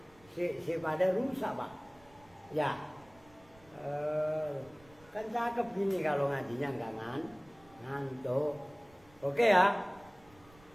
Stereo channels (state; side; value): noise; right; rumble, 26 dB below the sound